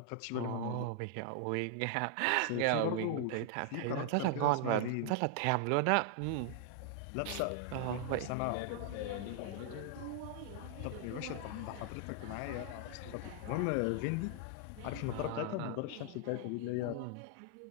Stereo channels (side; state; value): both; different; correlation 0.00